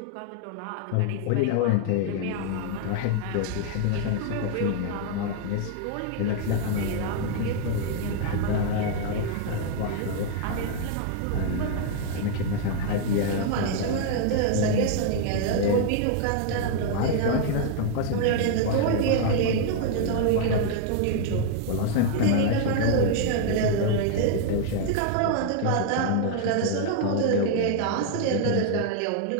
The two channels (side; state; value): both; different; correlation 0.00